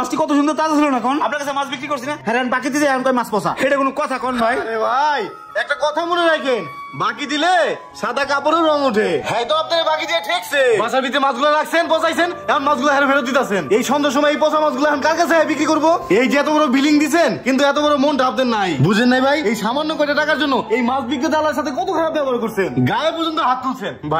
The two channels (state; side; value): identical; both; correlation 1.00